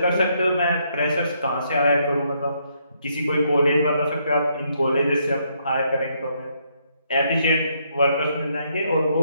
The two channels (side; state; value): both; inverted; correlation -0.74